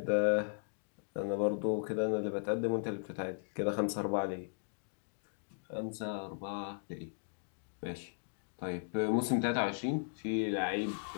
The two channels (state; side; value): silent; right; digital silence